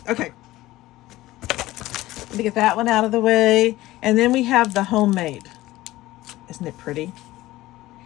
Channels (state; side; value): quieter; right; 17.1 dB